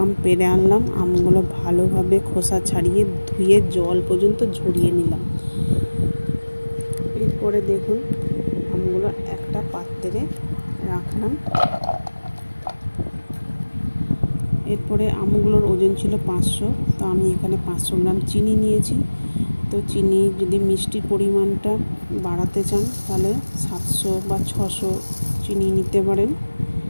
আম পেড়ে আনলাম। আমগুলো ভালোভাবে খোসা ছাড়িয়ে ধুয়ে জল পর্যন্ত ঝরিয়ে নিলাম। এরপরে দেখুন আমগুলো একটা পাত্রে রাখলাম। এরপরে আমগুলোর ওজন ছিল 500, তো আমি এখানে 500 গ্রাম চিনি নিয়েছি। তো চিনি যদি মিষ্টির পরিমাণটা বাড়াতে চান তাহলে 700 বা 600 চিনি নিতে পারেন।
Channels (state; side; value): inverted; both; correlation -1.00